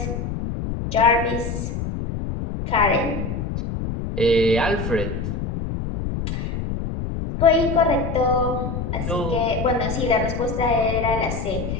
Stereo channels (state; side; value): noise; left; rumble, 4 dB below the sound